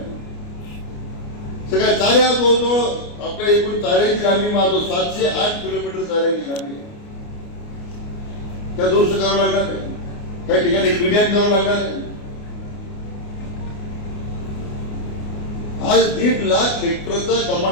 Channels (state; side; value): late; right; 29 ms